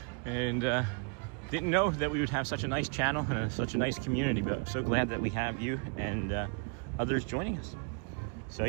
And didn't know that we would have such a nice channel and such a nice community, but I'm so glad that we have you and others joining us. So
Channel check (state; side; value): quieter; left; 35.0 dB